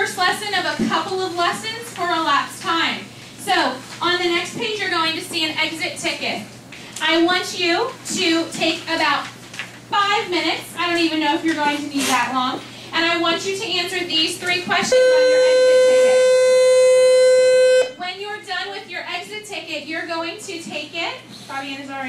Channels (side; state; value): both; identical; correlation 1.00